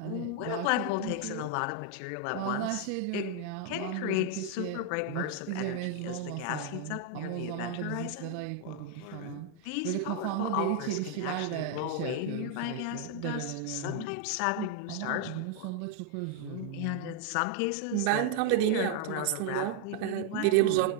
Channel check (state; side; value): different; both; correlation 0.00